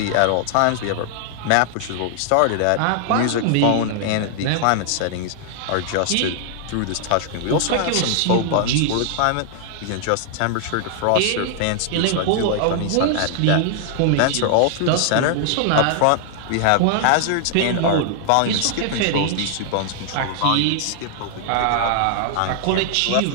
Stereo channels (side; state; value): both; different; correlation -0.01